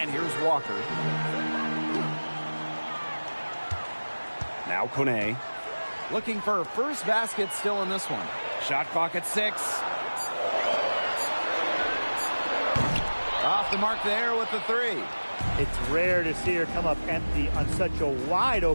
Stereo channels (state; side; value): inverted; both; correlation -1.00